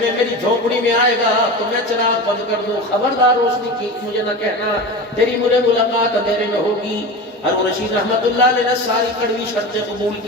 میری جھونپڑی میں آئے گا تو میں چراغ بند کر دوں. خبردار روشنی کی مجھے نہ کہنا، تیری مجھے ملاقات اندھیرے میں ہوگی. ہارون رشید رحمت اللہ علیہ نے ساری کڑوی شرطیں قبول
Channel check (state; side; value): normal; both; correlation 0.28